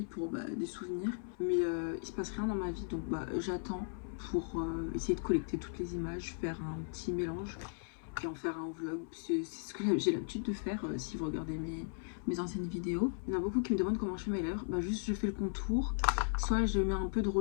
pour des souvenirs. Mais il se passe rien dans ma vie donc j'attends pour essayer de collecter toutes les images, faire un petit mélange et en faire un vlog. C'est ce que j'ai l'habitude de faire si vous regardez mes anciennes vidéos. Il y en a beaucoup qui me demandent comment je fais mes lèvres. Juste je fais le contour. Soit je mets un peu de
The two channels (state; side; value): silent; right; 53 dB below the other